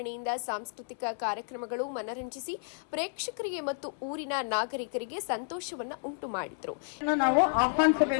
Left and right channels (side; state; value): right; silent; 57 dB below the other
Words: ಸಾಂಸ್ಕೃತಿಕ ಕಾರ್ಯಕ್ರಮಗಳು ಮನರಂಜಿಸಿ ಪ್ರೇಕ್ಷಕರಿಗೆ ಮತ್ತು ಊರಿನ ನಾಗರಿಕರಿಗೆ ಸಂತೋಷವನ್ನು ಉಂಟು ಮಾಡಿದರು. ನಾವು